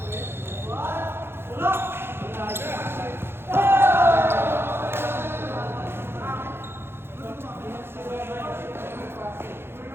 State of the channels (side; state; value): left; late; 0.11 ms